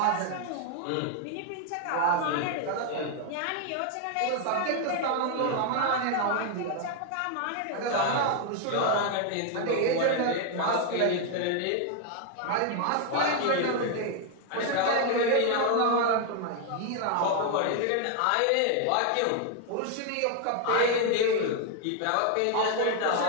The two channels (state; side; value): different; both; correlation 0.00